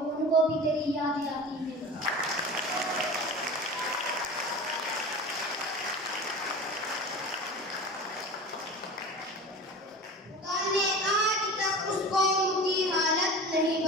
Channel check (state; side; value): normal; both; correlation 0.35